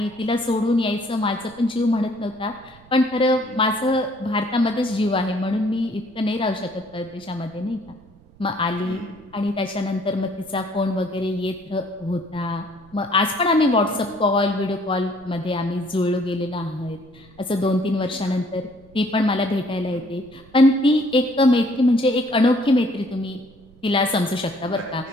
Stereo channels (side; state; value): right; noise; rumble, 25 dB below the sound